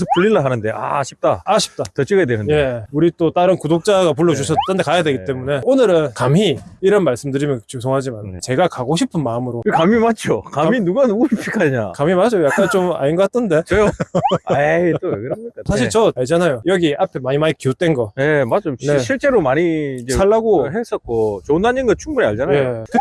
풀릴라 하는데 아쉽다. 아쉽다. 더 찍어야 되는데. 예, 우리 또 다른 구독자가 불러주셨던 데 가야 되기 네. 때문에 오늘은 감히 이런 말씀드리면 죄송하지만 네. 제가 가고 싶은 마음으로 그 감이 맞죠? 감이 누가 누구를 픽하냐? 감히 맞아요. 약간 좀 아닌 것 같던데. 저요? 에이 또 왜 그럽니까? 사실 저 알잖아요. 여기 앞에 많이 기웃된 거 네, 맞죠. 네. 실제로 많이 이제 살라고. 했었고 좋은 단인 거 충분히 알잖아요. 예,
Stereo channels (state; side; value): identical; both; correlation 1.00